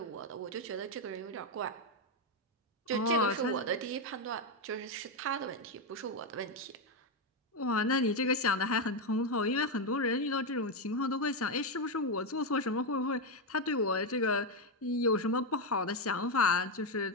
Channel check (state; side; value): normal; both; correlation 0.06